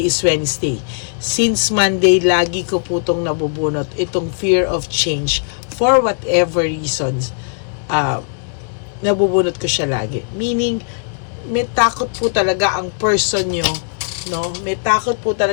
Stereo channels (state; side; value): silent; right; digital silence